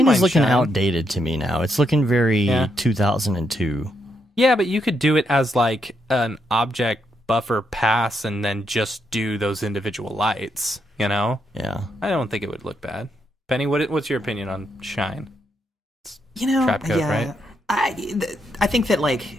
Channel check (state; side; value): normal; both; correlation 0.79